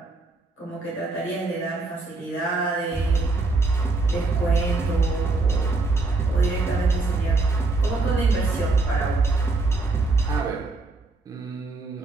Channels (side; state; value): left; quieter; 3.4 dB